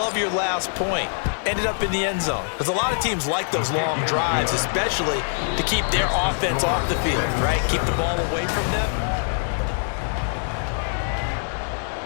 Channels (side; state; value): right; silent; digital silence